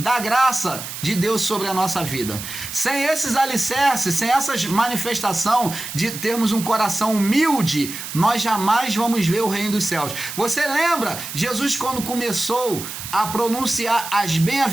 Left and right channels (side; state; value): right; noise; hiss, 9 dB below the sound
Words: graça de Deus sobre a nossa vida. Sem esses alicerces, sem essas manifestações de termos um coração humilde, nós jamais vamos ver o reino dos céus. Você lembra Jesus quando começou a pronunciar as